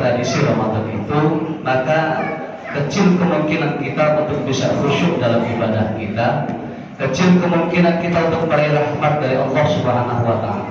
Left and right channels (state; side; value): identical; both; correlation 1.00